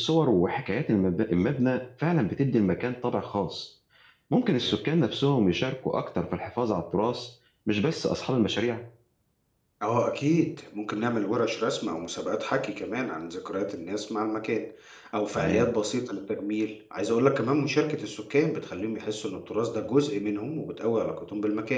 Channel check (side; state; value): both; identical; correlation 1.00